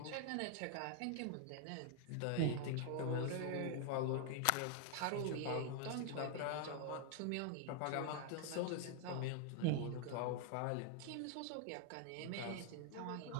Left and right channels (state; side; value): different; both; correlation 0.00